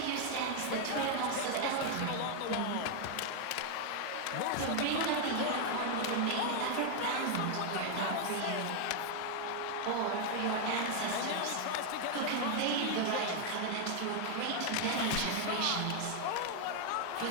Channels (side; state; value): both; different; correlation 0.00